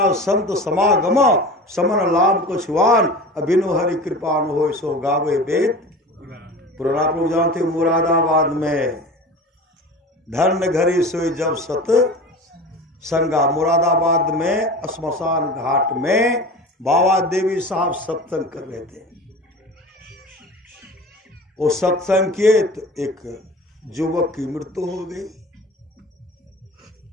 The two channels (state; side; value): normal; both; correlation 0.35